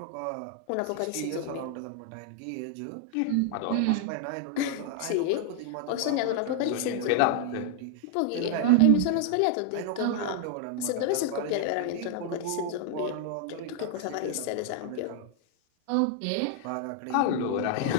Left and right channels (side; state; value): both; different; correlation 0.00